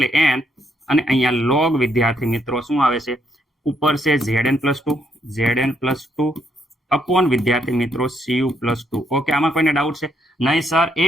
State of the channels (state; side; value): normal; both; correlation 0.74